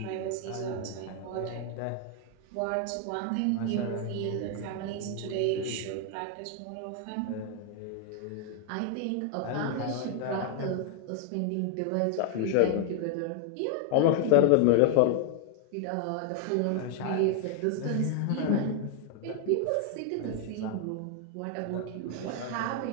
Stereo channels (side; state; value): both; different; correlation 0.00